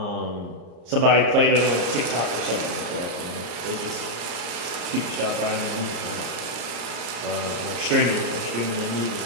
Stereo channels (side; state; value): left; late; 35 ms